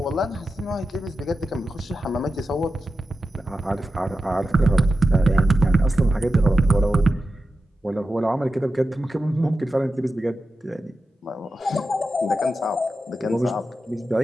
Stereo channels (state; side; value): normal; both; correlation 0.91